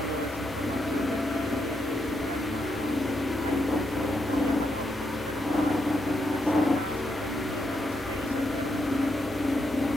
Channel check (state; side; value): normal; both; correlation 0.80